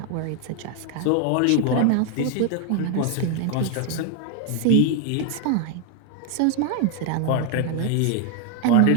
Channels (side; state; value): both; different; correlation 0.01